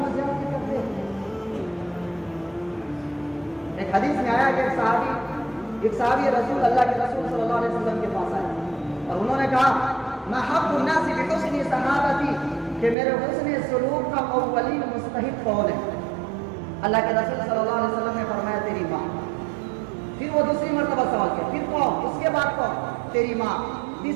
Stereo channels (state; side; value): drops out; left; at 13.0 s